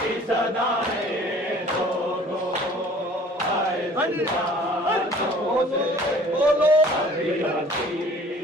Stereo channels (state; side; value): normal; both; correlation 0.51